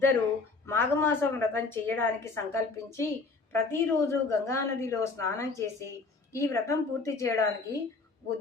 మాఘమాసం వ్రతం చేయడానికి సంకల్పించి ప్రతిరోజు గంగానదిలో స్నానం చేసి ఈ వ్రతం పూర్తి చేయడానికి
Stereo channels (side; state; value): right; quieter; 3.9 dB